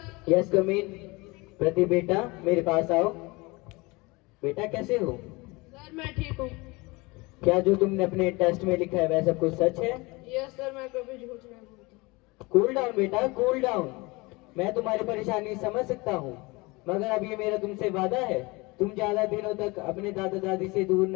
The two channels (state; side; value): quieter; right; 24.6 dB